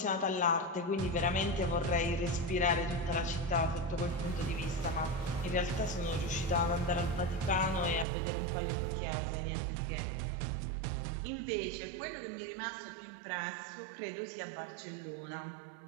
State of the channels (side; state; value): left; drops out; at 8.1 s